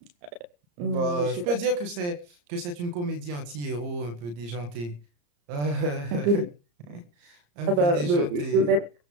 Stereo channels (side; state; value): left; late; 34 ms